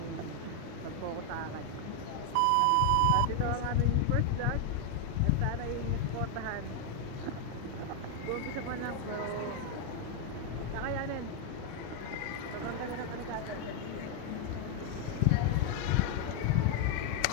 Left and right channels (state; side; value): different; both; correlation 0.00